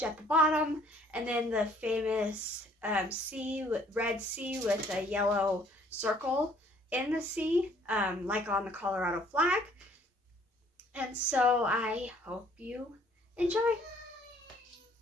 at the bottom, and then the famous red C with a yellow circle in the C, like on the Colorado flag. And so I hope you enjoy.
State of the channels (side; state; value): both; normal; correlation 0.60